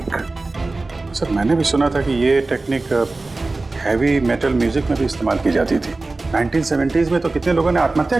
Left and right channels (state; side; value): quieter; left; 3.3 dB